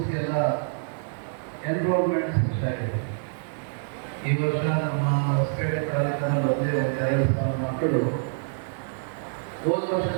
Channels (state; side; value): silent; left; 61 dB below the other